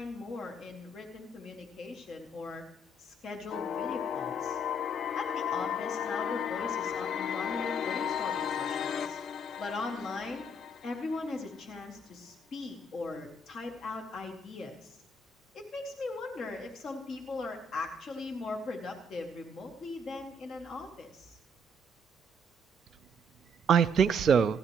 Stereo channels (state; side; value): normal; both; correlation 0.67